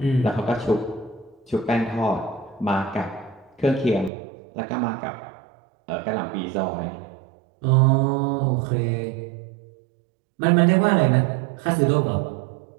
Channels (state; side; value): drops out; left; at 4.1 s